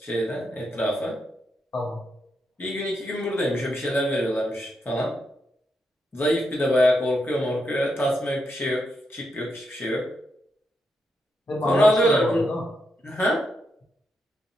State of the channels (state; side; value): normal; both; correlation 0.82